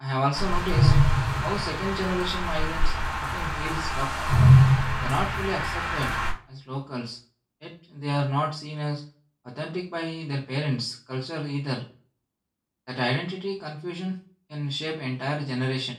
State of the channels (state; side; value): identical; both; correlation 1.00